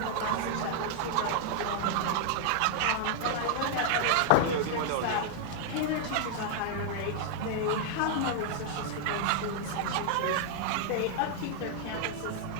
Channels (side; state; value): both; different; correlation 0.00